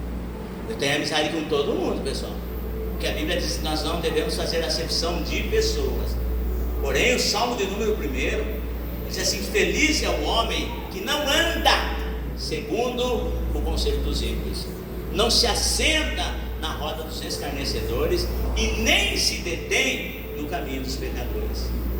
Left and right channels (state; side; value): identical; both; correlation 1.00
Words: Eu tenho amizade com todo mundo, pessoal, porque a Bíblia diz que nós não devemos fazer acepção de pessoas. Porém, o Salmo de número 1 diz assim: feliz é o homem que não anda segundo o conselho dos ímpios, não se assenta na roda dos escarnecedores e nem se detém no caminho dos pecadores.